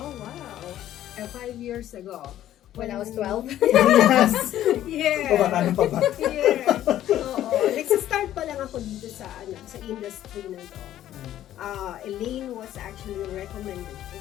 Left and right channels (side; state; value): right; quieter; 12.5 dB